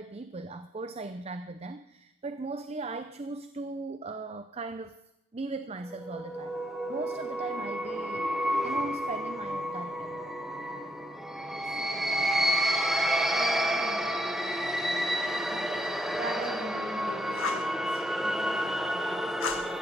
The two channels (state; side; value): normal; both; correlation 0.77